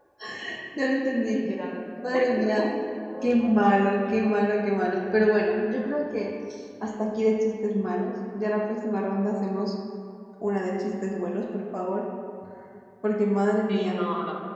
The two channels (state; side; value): identical; both; correlation 1.00